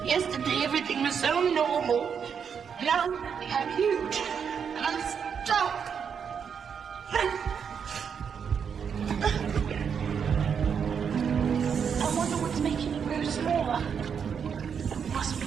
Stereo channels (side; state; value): left; quieter; 7.0 dB